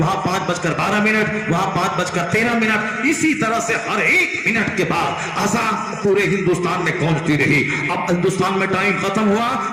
5:12، وہاں 5:13۔ اسی طرح سے ہر 1 منٹ کے بعد اذان پورے ہندوستان میں گونجتی رہی۔ اب ہندوستان میں ٹائم ختم ہوا،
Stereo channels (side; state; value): both; identical; correlation 1.00